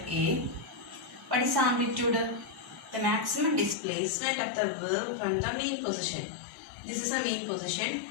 A. What is amplitude? The maximum displacement of the wave from the mean position. This is a mean position,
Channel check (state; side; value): drops out; right; at 3.8 s